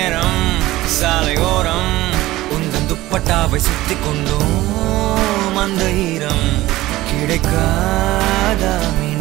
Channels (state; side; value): quieter; left; 17.2 dB